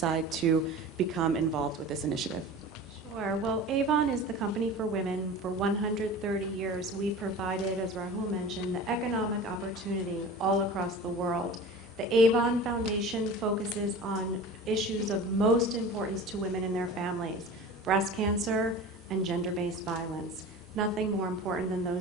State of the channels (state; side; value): normal; both; correlation 0.36